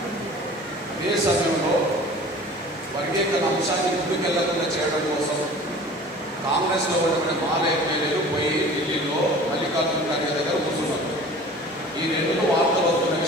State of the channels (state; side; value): normal; both; correlation 0.43